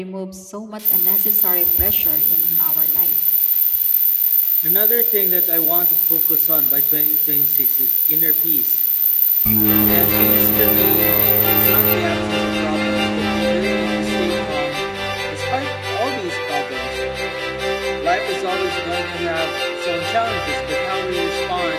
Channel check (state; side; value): identical; both; correlation 1.00